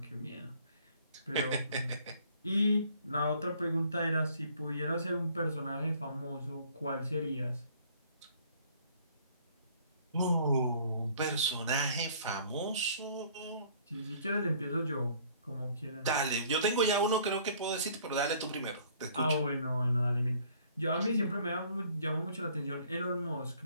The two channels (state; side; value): inverted; both; correlation -0.58